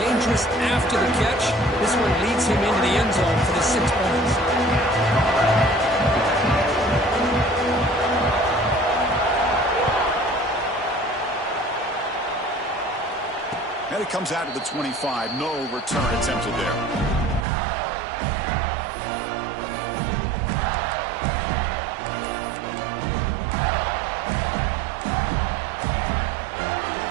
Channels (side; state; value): left; drops out; at 17.4 s